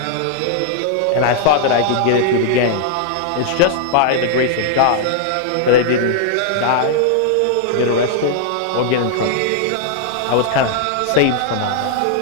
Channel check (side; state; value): both; different; correlation -0.01